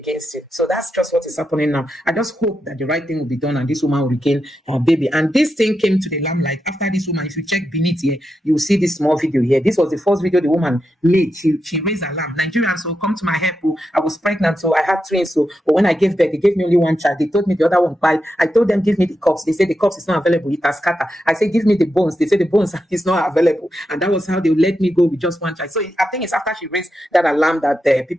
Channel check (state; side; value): normal; both; correlation 0.87